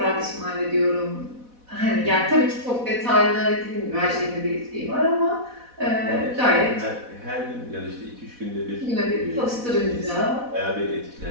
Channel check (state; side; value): late; left; 4.1 ms